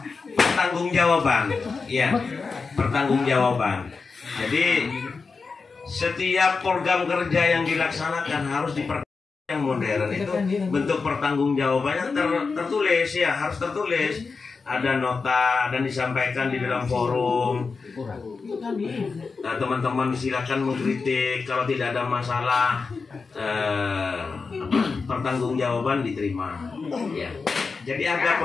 pertanggungjawaban, ya. Pertanggungjawaban. Jadi setiap program kerja yang dilaksanakan harus yang modern itu bentuk pertanggungjawabannya tertulis, ya, harus tertulis. Ada nota dan disampaikan di dalam forum. Nah, teman-teman silakan mengkritik, kalau tidak ada masalah, pertanggungjawaban diterima, ya. Jadi ada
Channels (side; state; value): right; quieter; 4.7 dB